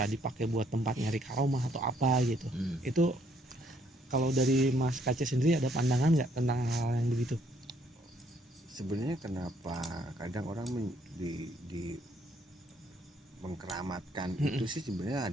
dipakai buat tempat nyari karomah atau apa gitu. Itu kalau dari Mas Kace sendiri ada pandangan nggak tentang hal yang begitu? Sebenarnya kenapa kadang orang di mengkeramatkan itu sih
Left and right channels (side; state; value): both; normal; correlation 0.68